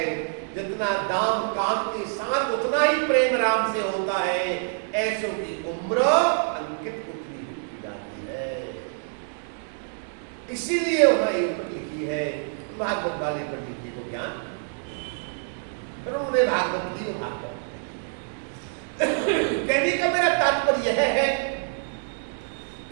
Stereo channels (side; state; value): left; silent; digital silence